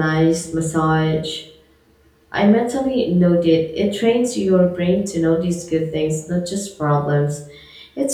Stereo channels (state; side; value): identical; both; correlation 1.00